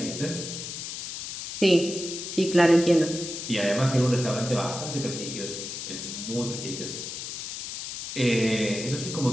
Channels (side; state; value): left; noise; hiss, 7 dB below the sound